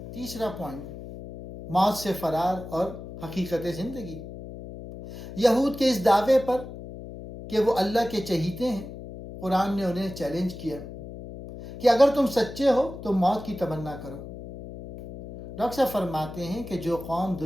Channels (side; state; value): left; noise; hum, 11 dB below the sound